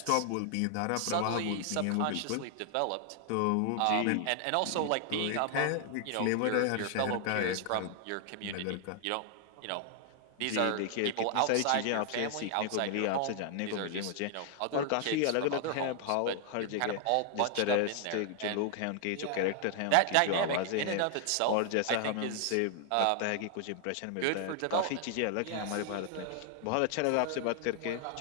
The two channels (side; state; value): both; different; correlation 0.00